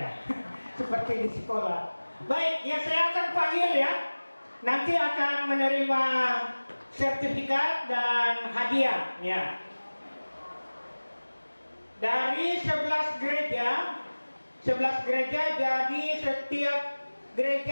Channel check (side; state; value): both; inverted; correlation -1.00